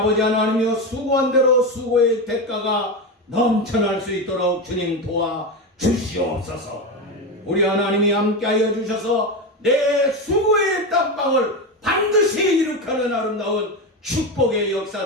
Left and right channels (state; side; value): normal; both; correlation 0.17